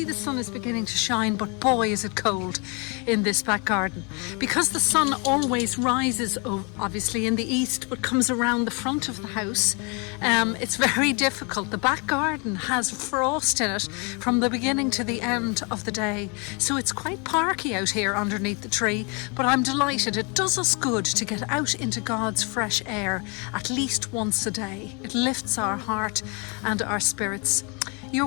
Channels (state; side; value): quieter; right; 32.9 dB